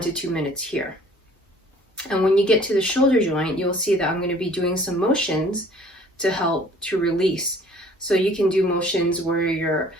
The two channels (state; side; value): normal; both; correlation 0.54